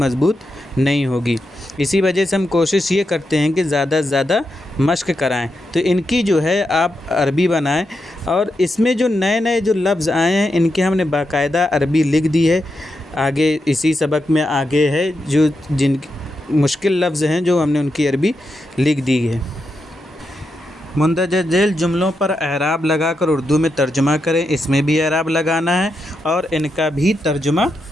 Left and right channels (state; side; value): normal; both; correlation 0.85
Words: نہیں ہوگی۔ اسی وجہ سے ہم کوشش یہ کرتے ہیں کہ زیادہ سے زیادہ مشق کرائیں۔ تو ان کی جو ہے آپ عربی بنائیں، اور اس میں جو نئے جو لفظ آئے ہیں ان کے ہم نے باقاعدہ عربی لکھ دی ہے۔ آگے اسی سبق میں آگے ہے جو جن مشکل لفظ ہیں جو ہم نے ان کی عربی لکھ دی ہے۔ مندرجہ ذیل جملوں پر اعراب لگا کر اردو میں ترجمہ کریں۔ اس میں بھی اعراب لگانا ہے اور ان کا بھی ترجمہ